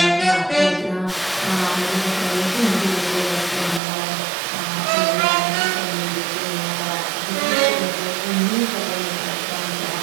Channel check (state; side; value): drops out; left; at 3.8 s